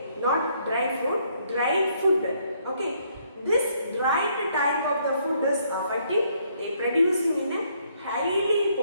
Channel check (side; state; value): both; inverted; correlation -0.69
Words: not dry fruit, dry food. Okay. This dried type of the food is affecting, they producing in a highly